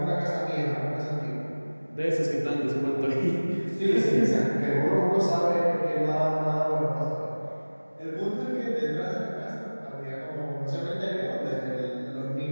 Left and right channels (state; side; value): inverted; both; correlation -1.00